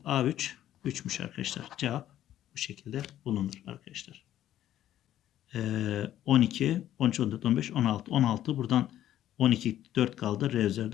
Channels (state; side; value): quieter; right; 12.2 dB